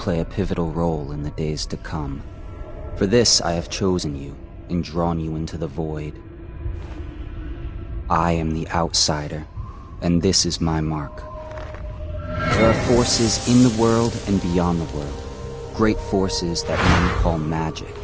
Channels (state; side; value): identical; both; correlation 1.00